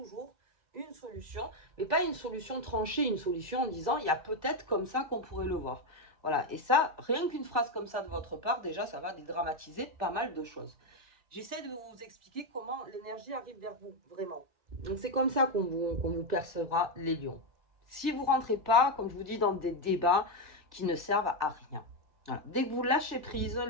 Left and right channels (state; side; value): late; left; 2.0 ms